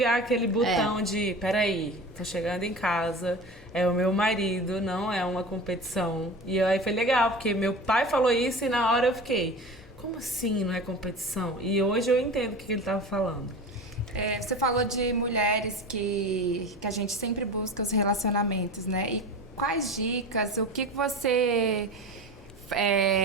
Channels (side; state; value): both; normal; correlation 0.32